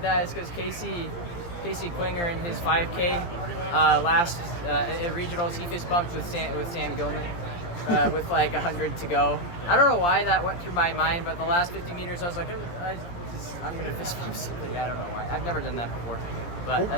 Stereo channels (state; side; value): late; right; 17 ms